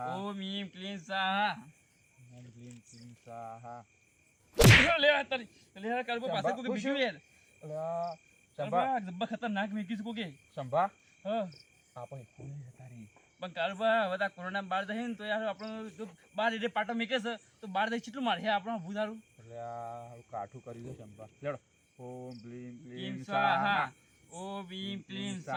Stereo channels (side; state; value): both; identical; correlation 1.00